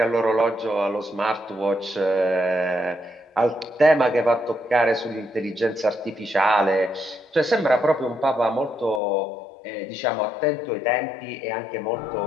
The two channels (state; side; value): drops out; right; at 9.0 s